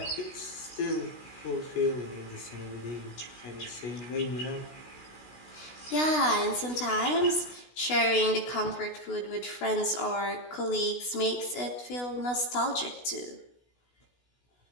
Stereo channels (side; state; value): right; late; 16 ms